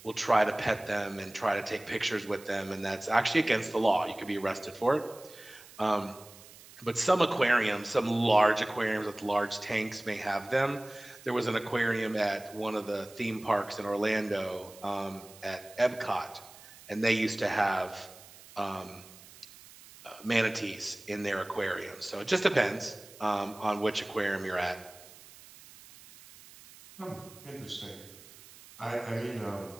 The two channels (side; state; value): right; noise; hiss, 20 dB below the sound